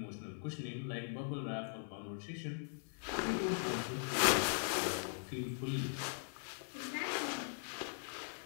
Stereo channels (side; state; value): right; silent; 51 dB below the other